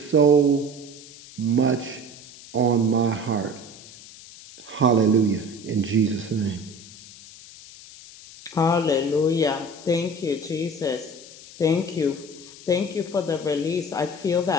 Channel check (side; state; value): left; noise; hiss, 18 dB below the sound